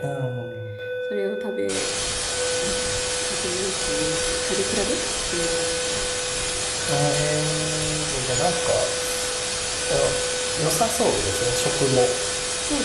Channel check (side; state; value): both; identical; correlation 1.00